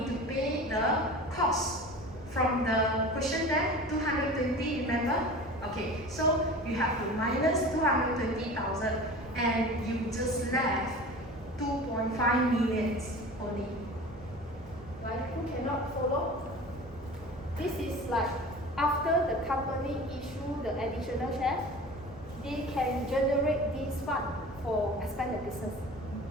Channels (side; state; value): both; normal; correlation 0.37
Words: to pay the cost from the question there, 220. Remember? Okay, so you have to minus 220,000, and you just left 2.5 million only. Right? Who cannot follow? This is like after the company issue the additional shares, they can generate this fund for expand the business.